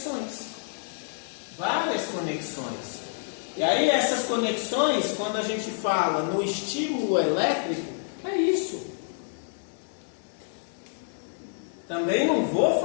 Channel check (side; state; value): right; silent; 59 dB below the other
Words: Várias conexões. E aí essas conexões, quando a gente fala no estímulo elétrico, é isso. Também não vou